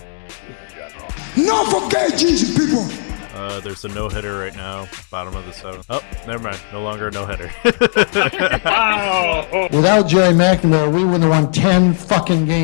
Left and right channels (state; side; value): silent; right; digital silence